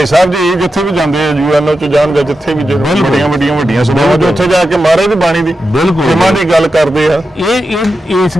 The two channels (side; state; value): both; normal; correlation 0.90